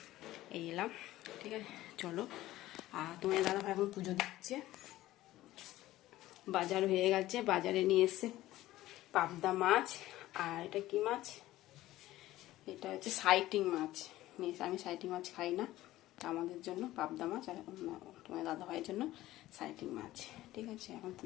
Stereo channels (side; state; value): right; quieter; 15.8 dB